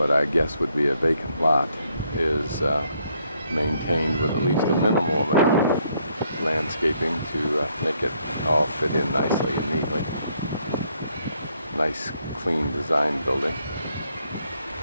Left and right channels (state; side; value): inverted; both; correlation -0.72